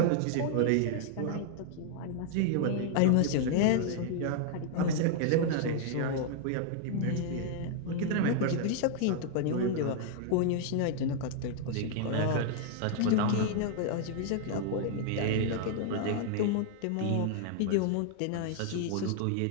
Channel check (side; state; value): both; different; correlation 0.00